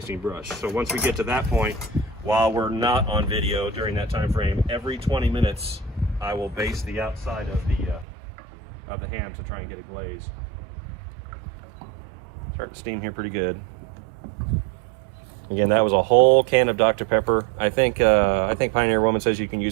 brush. So once we get to that point, while we're not on video during that time frame, every 20 minutes I will baste the outside of the ham to try and get a glaze. Start to steam here pretty good. Again, that was a whole can of Dr. Pepper. I think Pioneer Woman says you can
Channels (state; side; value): drops out; left; at 8.1 s